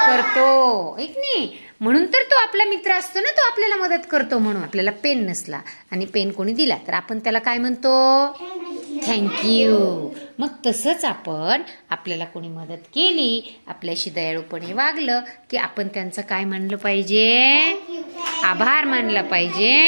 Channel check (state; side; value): inverted; both; correlation -1.00